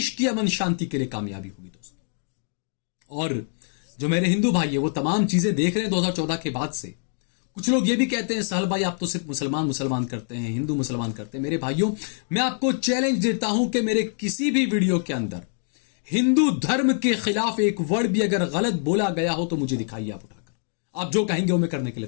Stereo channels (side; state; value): right; silent; 62 dB below the other